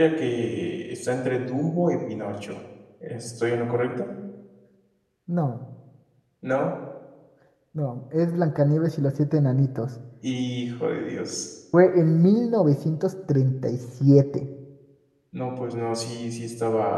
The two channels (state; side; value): identical; both; correlation 1.00